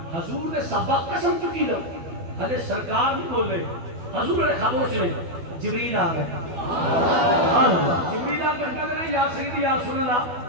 حضور نے صحابہ قسم چکی دا حضر سرکار نہیں بول رہے حضور نے خاموش نہیں جبریل آ گئے جبریل آ کر کہتے ہیں یا سیدی یا رسول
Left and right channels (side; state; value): left; late; 12 ms